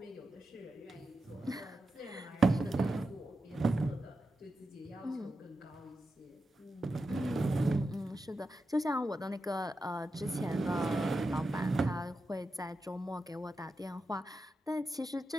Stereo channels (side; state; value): both; normal; correlation 0.89